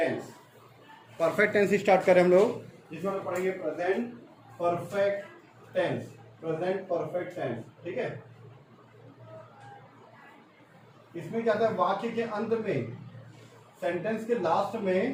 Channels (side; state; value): both; identical; correlation 1.00